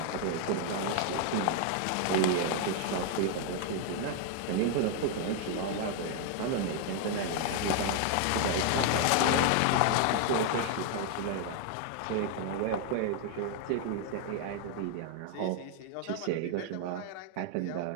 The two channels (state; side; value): different; both; correlation 0.00